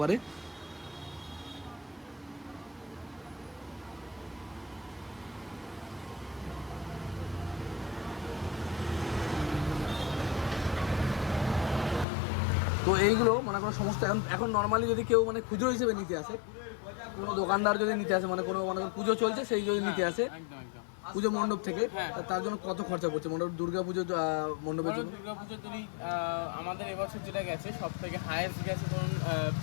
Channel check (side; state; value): right; drops out; at 12.1 s